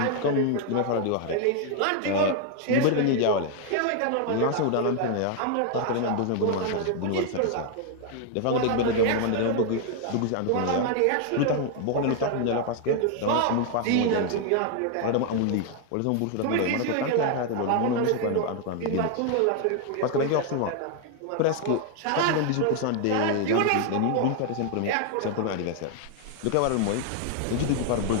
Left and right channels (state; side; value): different; both; correlation 0.00